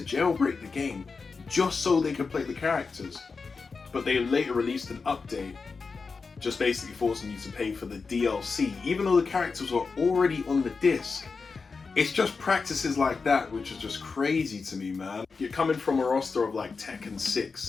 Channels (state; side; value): quieter; right; 4.7 dB